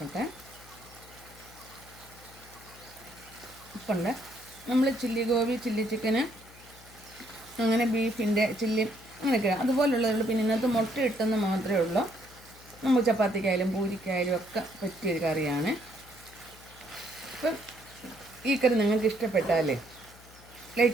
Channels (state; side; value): noise; left; hum, 22 dB below the sound